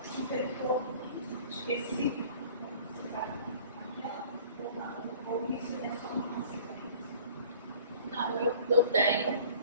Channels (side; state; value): both; inverted; correlation -0.49